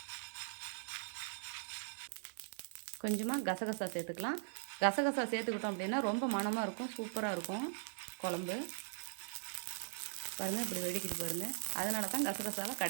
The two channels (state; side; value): silent; left; digital silence